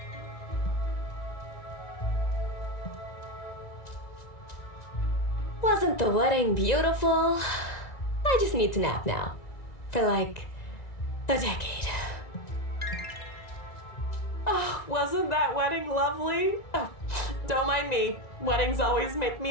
Wasn't the wedding beautiful? I just need to nap now. For like a decade. Oh, wasn't that wedding lovely? Oh, don't mind me. Weddings always make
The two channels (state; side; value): late; right; 1.9 ms